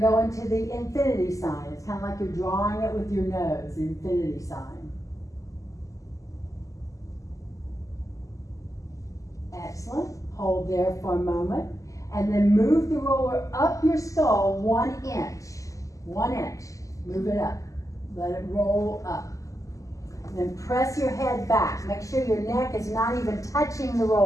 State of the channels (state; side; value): late; right; 0.16 ms